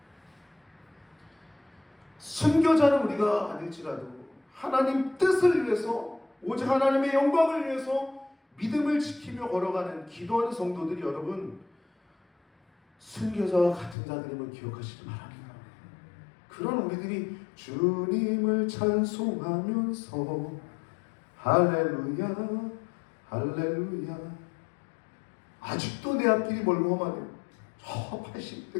순교자는 우리가 아닐지라도 하나님 뜻을 위해서 오직 하나님의 영광을 위해서 믿음을 지키며 걸어가는 기도하는 성도들이 여러분 순교자와 같은 자들임을 기억하시기 바랍니다. 그런 우리들이 주님을 찬송하면서 할렐루야 할렐루야, 아직도 내 앞길이 멀고 험하네요. 저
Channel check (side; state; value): right; drops out; at 14.0 s